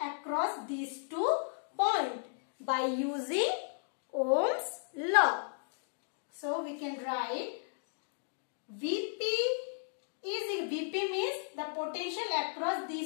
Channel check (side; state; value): right; silent; digital silence